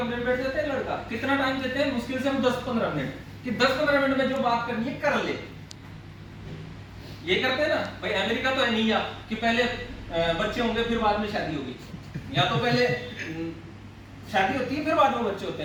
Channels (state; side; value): identical; both; correlation 1.00